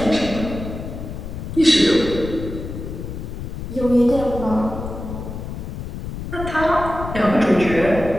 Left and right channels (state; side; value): noise; left; rumble, 8 dB below the sound